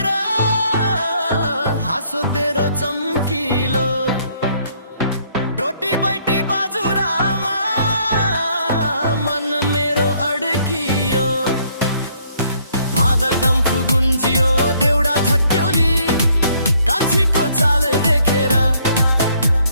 तेरो चम्किलो रोटी बैटी बाजुरामा मन मेरो अड्कियो मादल डम्फु गुन्जियो देउडा छट्क्यौली कान्छीको चाल देखेर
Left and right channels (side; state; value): both; inverted; correlation -0.66